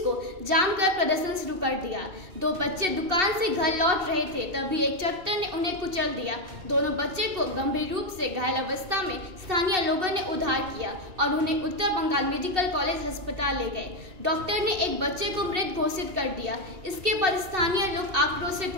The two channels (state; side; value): late; left; 2.7 ms